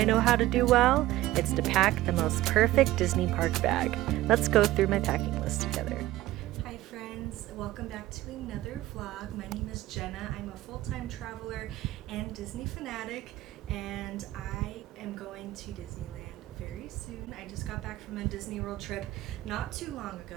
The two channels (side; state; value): left; quieter; 16.2 dB